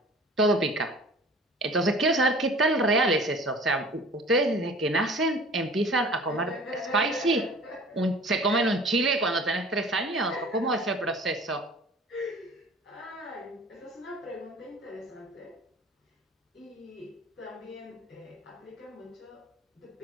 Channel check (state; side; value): normal; both; correlation 0.45